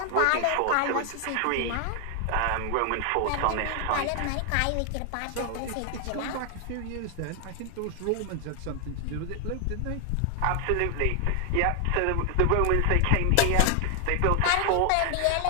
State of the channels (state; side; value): different; both; correlation 0.00